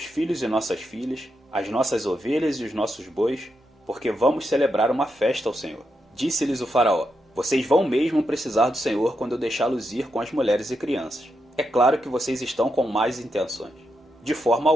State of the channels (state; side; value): normal; both; correlation 0.84